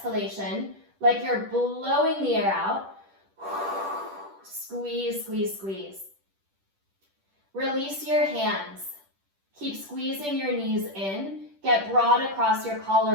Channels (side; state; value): left; late; 10 ms